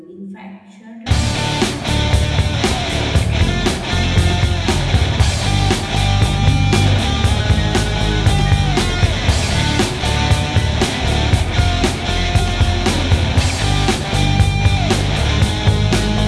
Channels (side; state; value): both; identical; correlation 1.00